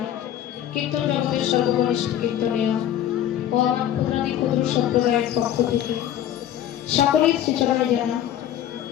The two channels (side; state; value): right; quieter; 11.3 dB